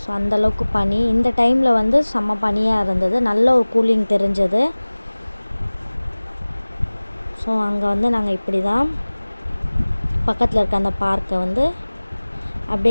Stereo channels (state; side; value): inverted; both; correlation -1.00